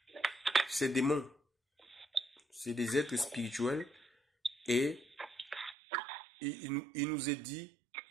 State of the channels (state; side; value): drops out; left; at 5.8 s